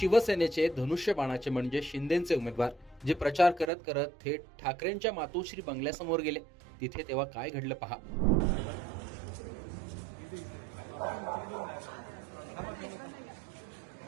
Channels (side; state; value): left; drops out; at 3.7 s